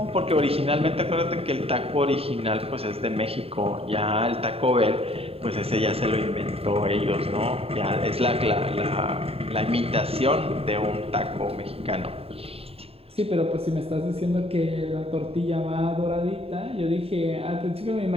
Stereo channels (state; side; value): late; left; 0.28 ms